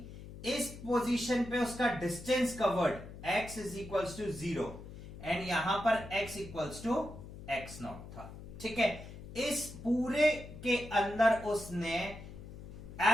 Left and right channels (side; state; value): left; noise; hum, 13 dB below the sound